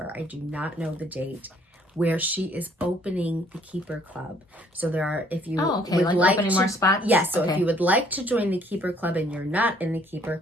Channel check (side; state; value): both; normal; correlation 0.62